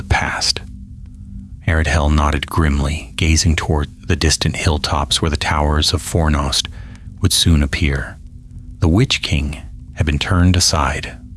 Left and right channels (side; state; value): both; identical; correlation 1.00